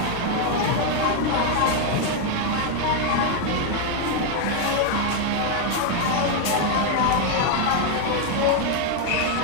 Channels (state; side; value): different; both; correlation 0.01